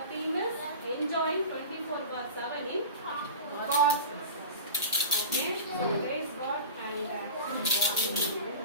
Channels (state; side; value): inverted; both; correlation -0.34